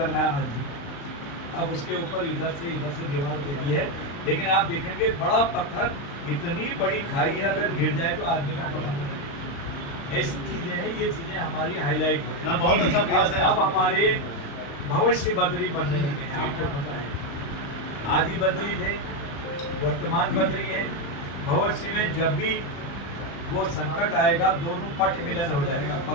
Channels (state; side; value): late; right; 35 ms